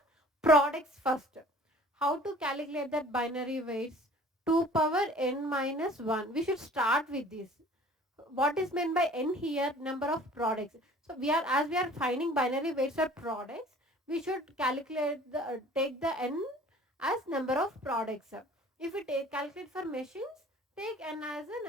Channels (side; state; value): both; normal; correlation 0.50